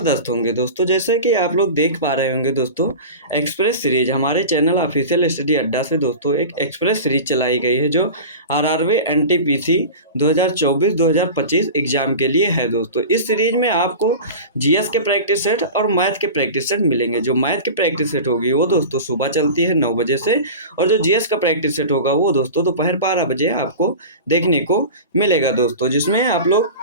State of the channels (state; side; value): inverted; both; correlation -0.32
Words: होंगे दोस्तों। जैसे कि आप लोग देख पा रहे होंगे दोस्तों, एक्सप्रेस सीरीज हमारे चैनल ऑफिशियल स्टडी अड्डा से दोस्तों एक एक्सप्रेस सीरीज चलाई गई है जो आरआरबी एनटीपीसी 2024-2025 एग्जाम के लिए है दोस्तों। इस सीरीज में आपको जीएस के प्रैक्टिस सेट और मैथ के प्रैक्टिस सेट मिलेंगे। जो मैथ की प्रैक्टिस सेट होगी वो दोस्तों सुबह चलती है 9 बजे से, और जो जीएस का प्रैक्टिस सेट होगा वो दोस्तों दोपहर 12 बजे आपको देखने को मिलेगा दोस्तों, जिसमें आप लोग